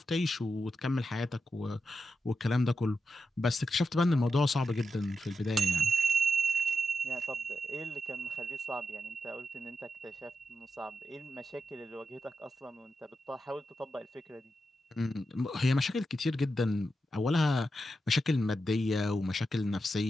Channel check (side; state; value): both; normal; correlation 0.87